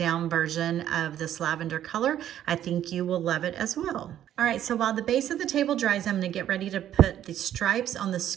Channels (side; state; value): left; quieter; 11.2 dB